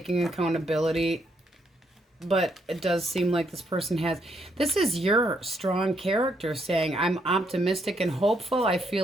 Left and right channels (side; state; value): both; normal; correlation 0.75